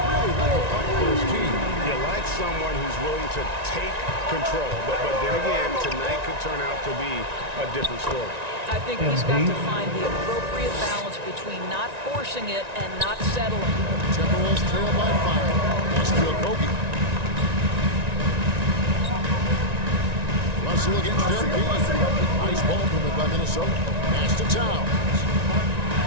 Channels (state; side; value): late; left; 1.9 ms